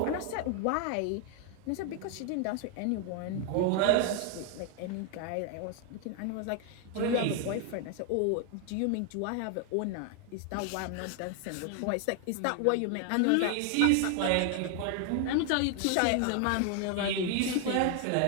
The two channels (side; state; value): both; different; correlation 0.00